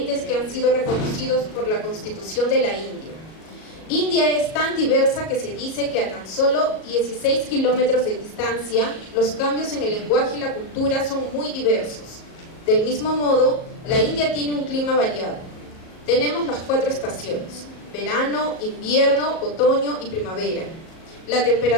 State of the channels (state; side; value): late; right; 37 ms